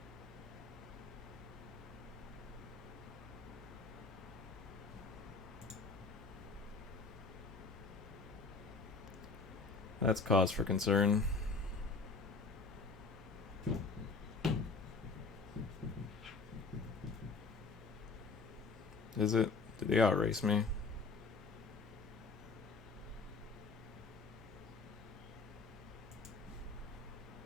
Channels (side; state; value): right; quieter; 4.2 dB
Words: That's cause for concern. Is it? Did they outrace me?